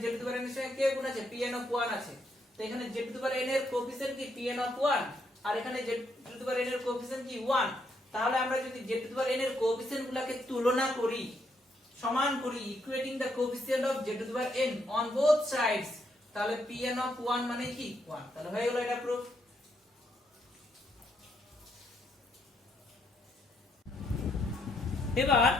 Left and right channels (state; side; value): normal; both; correlation 0.76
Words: z to the power n এর সঙ্গে কে গুণ আছে pn of 1 আছে, তো এখানে z to the power n এর কোএফিসিয়েন্ট কি pn of 1 আর এখানে z to the power n এর কোএফিসিয়েন্ট কি 1, তাহলে আমরা যদি z to the power n এর কোএফিসিয়েন্ট গুলোকে তুলনা করি সমান করি equating the coefficient of z to the power n on both sides, তাহলে pn of 1 মানে কি 1, তাহলে হয়ে গেল এটা প্রুফ। এবার